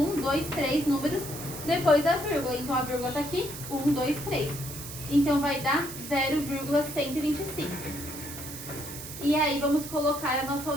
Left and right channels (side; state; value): right; noise; hiss, 10 dB below the sound